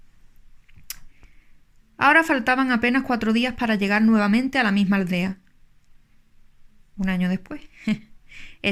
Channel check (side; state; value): both; identical; correlation 1.00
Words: Ahora faltaban apenas 4 días para llegar nuevamente a la misma aldea. Un año después.